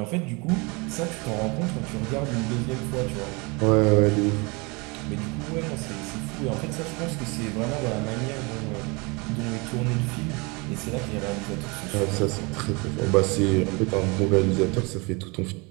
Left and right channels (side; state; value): left; quieter; 28.1 dB